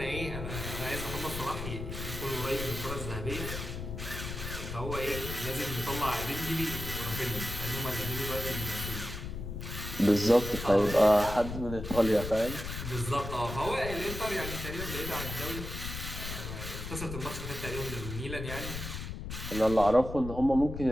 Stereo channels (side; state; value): left; noise; rumble, 7 dB below the sound